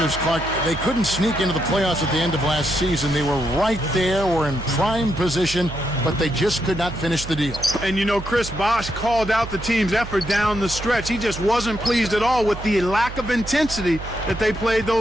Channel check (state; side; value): noise; right; hum, 10 dB below the sound